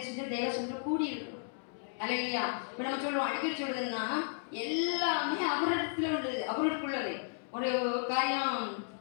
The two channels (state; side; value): silent; right; 55 dB below the other